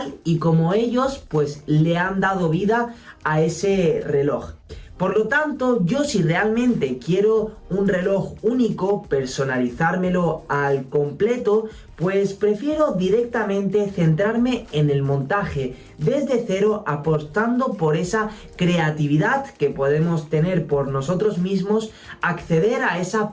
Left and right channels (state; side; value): identical; both; correlation 1.00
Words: y como ellos pues le han dado vida a ese reloj. Por lo tanto, yo si realmente quiero un reloj único, personalizármelo al completo, pues prefiero directamente centrarme en el montaje desde cero, apostando por esa creatividad que podemos tener por nosotros mismos, acceder a